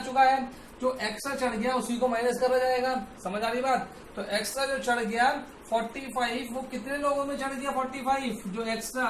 चुका है। जो एक्स्ट्रा चढ़ गया उसी को माइनस करा जाएगा, समझ आ रही बात। तो एक्स्ट्रा जो चढ़ गया 45, वो कितने लोगों में चढ़ गया 45 जो एक्स्ट्रा।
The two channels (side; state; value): both; identical; correlation 1.00